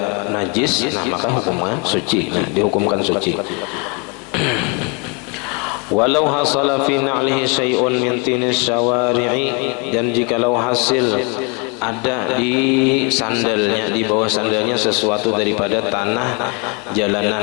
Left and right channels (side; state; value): right; quieter; 32.9 dB